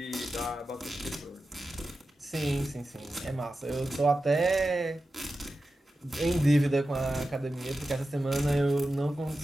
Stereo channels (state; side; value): normal; both; correlation 0.92